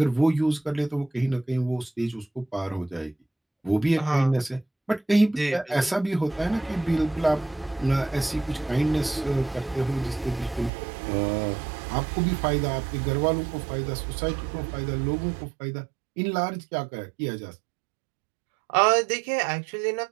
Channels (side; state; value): left; drops out; at 10.7 s